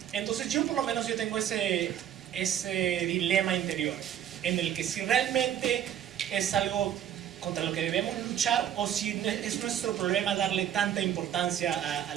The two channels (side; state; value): left; quieter; 10.2 dB